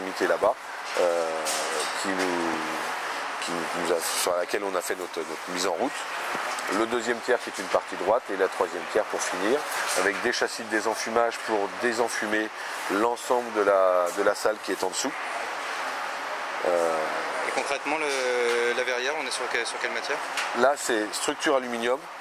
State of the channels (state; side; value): identical; both; correlation 1.00